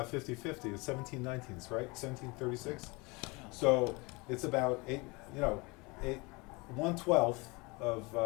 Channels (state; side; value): quieter; right; 26.4 dB